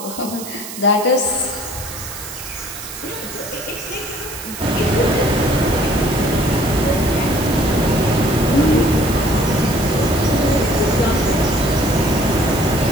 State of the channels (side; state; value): right; noise; hiss, 11 dB below the sound